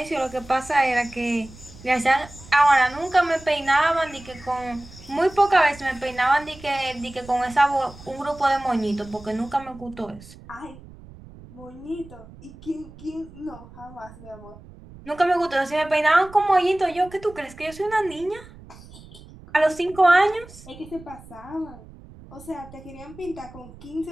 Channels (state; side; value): noise; right; rumble, 19 dB below the sound